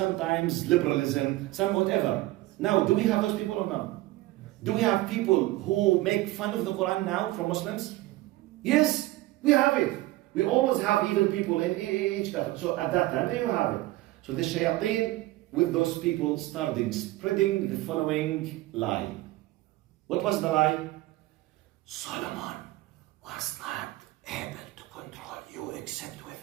liberalism, some whatever. Now, do we have those people or not? Do we have people who make fun of the Quran now from Muslims? Yes, we have it. We always have evil people in each country. So at that time, they have it. So the shayateen with those people started spreading the following lie. What was the lie? Solomon was not able to control you except with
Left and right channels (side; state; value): left; quieter; 18.2 dB